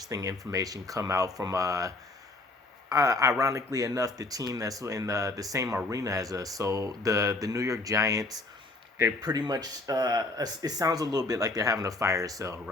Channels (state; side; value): quieter; right; 3.0 dB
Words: information come out from, ironically enough, the team that's in the same arena as us. So the New York Giants, they're pretty much. It sounds a little bit like they're having a fire sale,